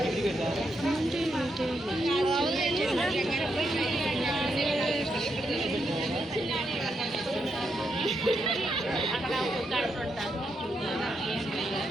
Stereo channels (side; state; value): both; normal; correlation 0.81